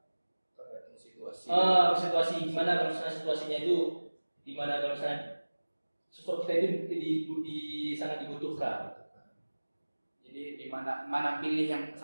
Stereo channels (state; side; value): inverted; both; correlation -1.00